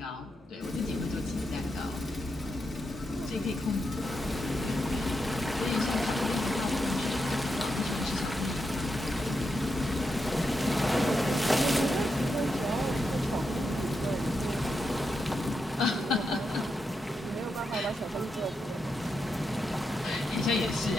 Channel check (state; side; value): normal; both; correlation 0.85